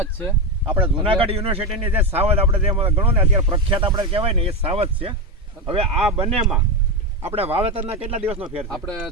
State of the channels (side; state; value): both; normal; correlation 0.12